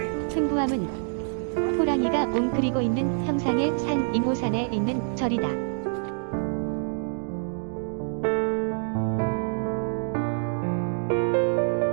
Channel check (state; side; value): silent; left; 61 dB below the other